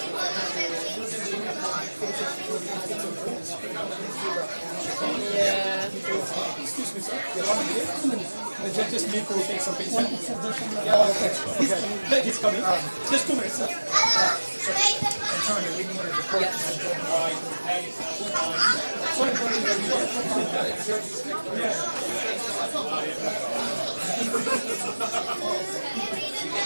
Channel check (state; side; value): inverted; both; correlation -1.00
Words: Yeah. Excuse me, sir. The judge's need to take some picture. Yeah, okay. He's coming. Just 2 minutes, sir. Antonio, we need to report to the judge.